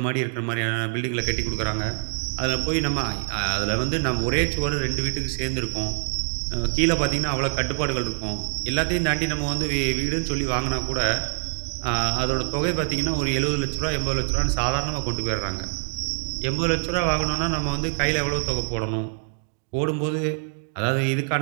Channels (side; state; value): left; silent; digital silence